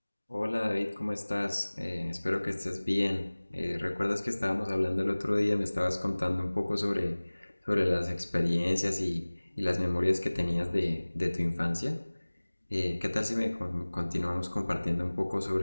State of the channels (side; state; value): both; inverted; correlation -1.00